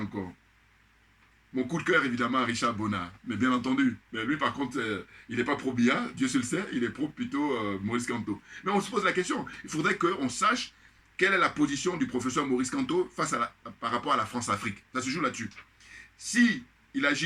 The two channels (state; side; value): identical; both; correlation 1.00